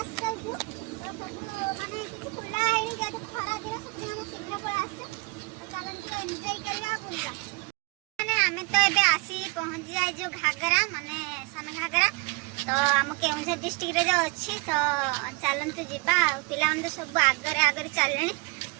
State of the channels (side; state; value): left; quieter; 29.7 dB